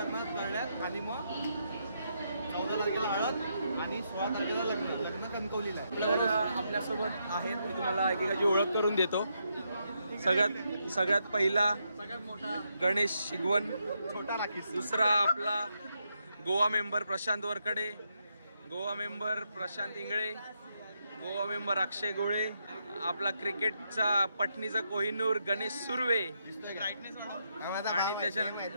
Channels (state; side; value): inverted; both; correlation -0.80